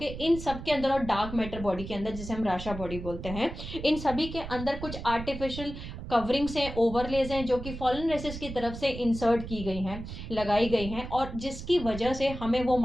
इन सब के अंदर, और डार्क मैटर बॉडी के अंदर जिसे हम राशा बॉडी बोलते हैं, इन सभी के अंदर कुछ आर्टिफिशियल कवरिंग्स हैं, ओवरलेज हैं, जो कि फॉलन रेसेस की तरफ से इंसर्ट की गई हैं, लगाई गई हैं, और जिसकी वजह से हमें वो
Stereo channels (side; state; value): right; noise; rumble, 9 dB below the sound